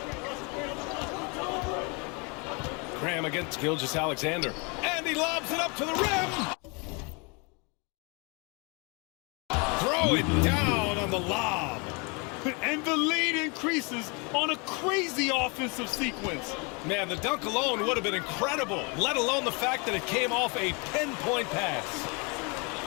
Graham against Gilgeous-Alexander. And he lobs it up to the rim. Throw it down on the lob. And the lead increases on a crazy offensive sequence. Man, the dunk alone would have been incredible, let alone the fact that it came off a pinpoint pass.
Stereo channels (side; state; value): right; quieter; 31.4 dB